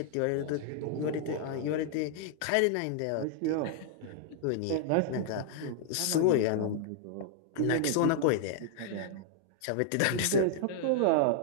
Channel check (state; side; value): different; both; correlation -0.01